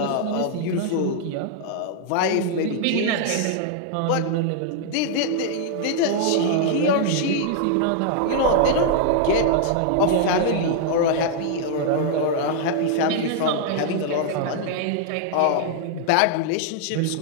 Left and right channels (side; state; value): both; different; correlation -0.01